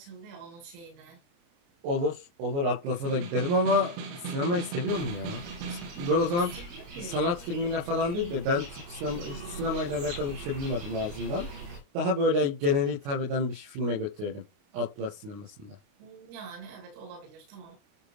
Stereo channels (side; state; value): left; late; 29 ms